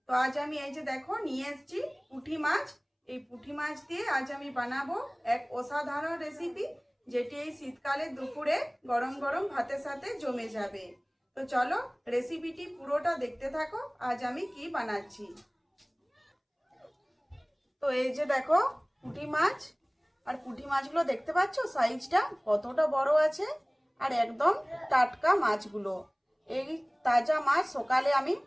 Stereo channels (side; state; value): both; identical; correlation 1.00